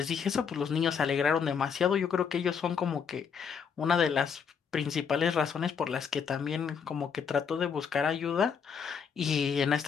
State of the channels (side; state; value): right; quieter; 6.7 dB